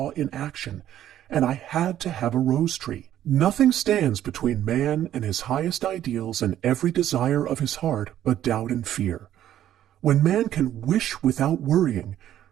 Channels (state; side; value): quieter; left; 11.7 dB